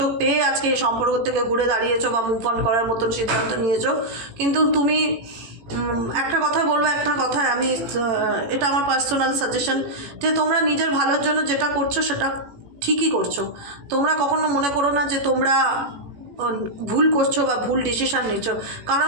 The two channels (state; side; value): late; left; 18 ms